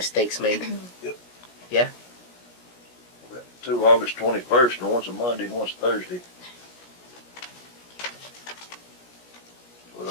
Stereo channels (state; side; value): late; right; 17 ms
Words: made? Two August 21st, and one's a Monday and one's Thursday. Well, I